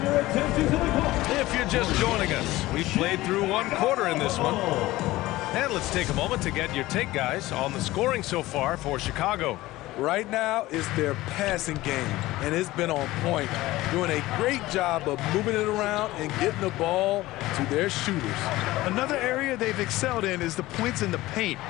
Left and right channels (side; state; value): right; quieter; 17.8 dB